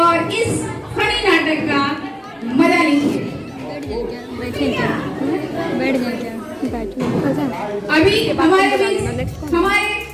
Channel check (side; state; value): both; identical; correlation 1.00